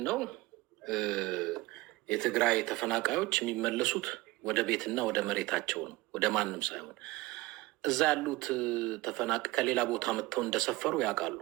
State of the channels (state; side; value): quieter; left; 20.3 dB